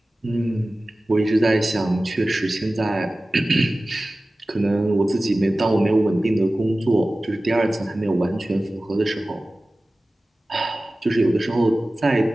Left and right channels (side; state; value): both; normal; correlation 0.97